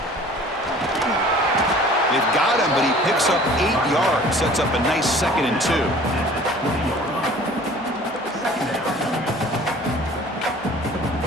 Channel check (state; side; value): normal; both; correlation 0.48